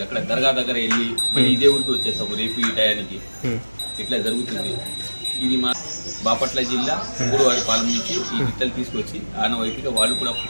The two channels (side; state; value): both; inverted; correlation -1.00